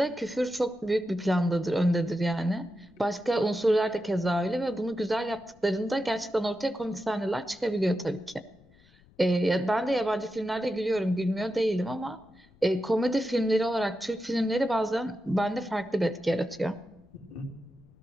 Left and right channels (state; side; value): noise; left; rumble, 29 dB below the sound